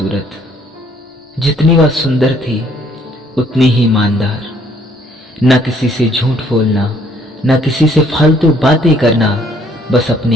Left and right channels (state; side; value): normal; both; correlation 0.63